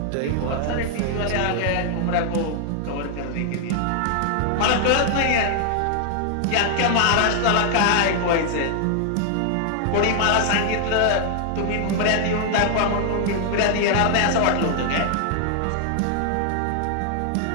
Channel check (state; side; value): different; both; correlation 0.00